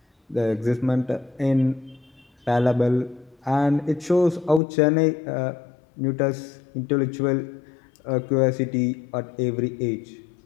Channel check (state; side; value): drops out; right; at 4.6 s